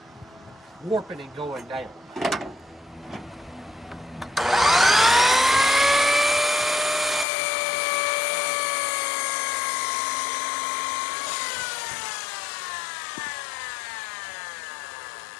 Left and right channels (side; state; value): right; drops out; at 7.2 s